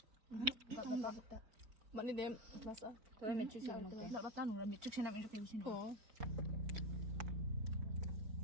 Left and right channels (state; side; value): late; left; 4.4 ms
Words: Bạn đi đem massage. Tôi mệt chút xíu nó cái. Đợi bắt ta nụ là mệt trước xem em cho cái gì nữa. Ồ.